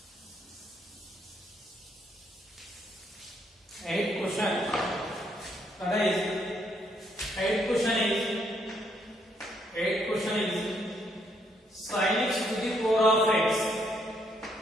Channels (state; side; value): normal; both; correlation 0.72